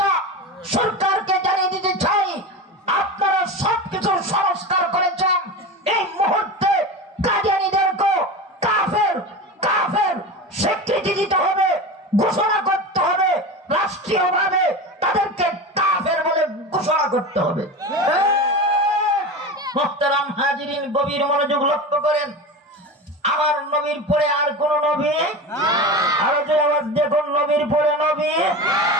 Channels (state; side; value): normal; both; correlation 0.26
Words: সরকারকে জানিয়ে দিতে চাই, আপনারা সবকিছু সংস্কার করেছেন, এই মুহূর্তে কাদিয়ানীদেরকে কাফের কাফের স্বীকৃতি দিতে হবে, ঘোষণা করতে হবে, রাষ্ট্রীয়ভাবে তাদেরকে কাফের বলে ঘোষণা করতে হবে। মুহতারাম হাজিরিন, গভীর মনোযোগ লক্ষ্য করেন। আমার নবীর পরে আর কোন নবী? আরো জোরে আওয়াজ দেখুন, নবীর পরে নবী?